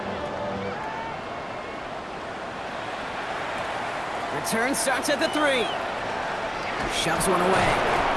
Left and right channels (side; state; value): both; identical; correlation 1.00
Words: Return starts at the 3. Shoves one away.